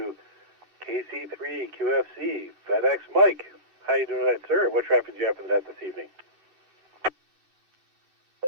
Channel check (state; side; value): late; left; 2.6 ms